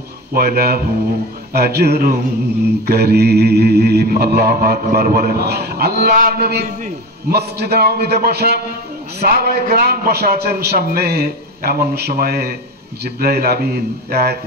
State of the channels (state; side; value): normal; both; correlation 0.27